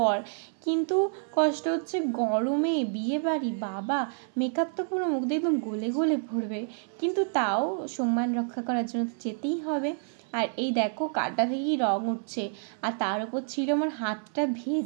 কিন্তু কষ্ট হচ্ছে গরমে বিয়ে বাড়ি, বাবা মেকআপ তো পুরো মুখ দিয়ে একদম গলে গলে পড়বে, কিন্তু তাও সম্মান রক্ষা করার জন্য তো যেতেই হবে। আর এই দেখো কাটা থেকেই রং উঠছে, আর তার উপর ছিল আমার হাতটা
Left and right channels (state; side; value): silent; left; 59 dB below the other